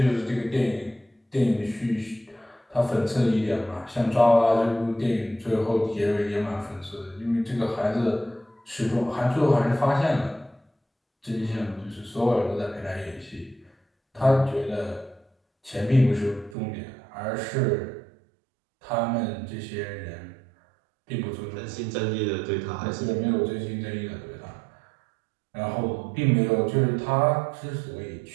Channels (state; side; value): drops out; left; at 16.6 s